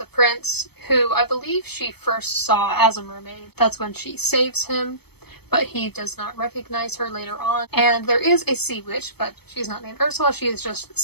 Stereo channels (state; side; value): late; right; 0.97 ms